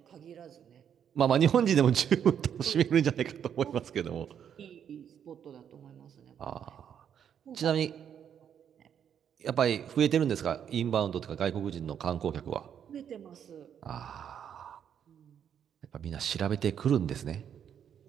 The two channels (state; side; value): quieter; left; 8.7 dB